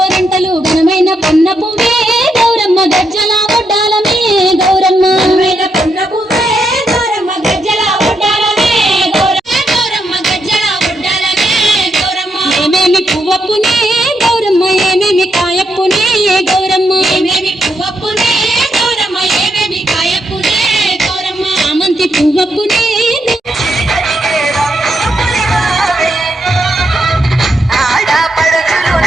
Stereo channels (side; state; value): both; normal; correlation 0.80